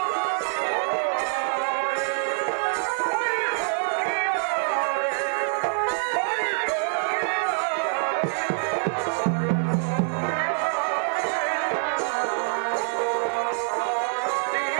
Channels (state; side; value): silent; left; 61 dB below the other